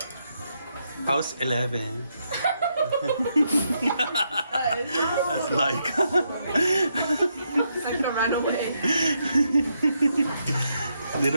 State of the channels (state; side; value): inverted; both; correlation -0.79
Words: House 11. That's like. Like to run away. They